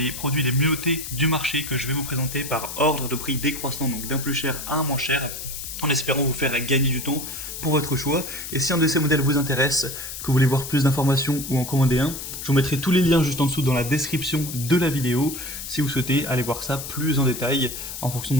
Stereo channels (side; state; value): left; noise; hiss, 8 dB below the sound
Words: produits les mieux notés du marché que je vais vous présenter par ordre de prix décroissant, donc d'un plus cher à un moins cher, en espérant vous faire gagner du temps pour votre choix. Et si un de ces modèles vous intéresse, que vous voulez voir plus d'informations ou en commander un, je vous mettrai tous les liens juste en dessous dans la description de la vidéo, si vous souhaitez aller voir ça plus en détail, en fonction